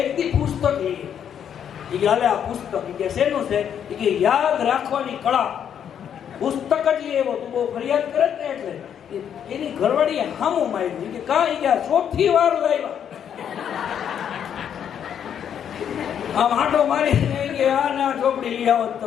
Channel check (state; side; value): quieter; right; 8.8 dB